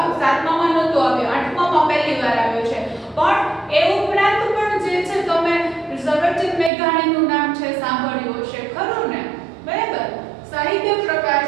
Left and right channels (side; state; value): left; drops out; at 6.7 s